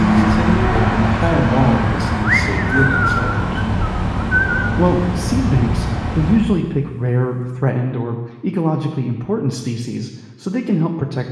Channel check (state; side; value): identical; both; correlation 1.00